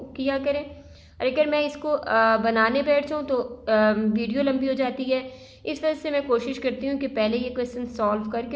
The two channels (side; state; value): both; identical; correlation 1.00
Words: किया करें। अगर मैं इसको बनाने बैठ जाऊँ तो वीडियो लंबी हो जाती है, इस वजह से मैं कोशिश करती हूँ कि पहले ये क्वेश्चन सॉल्व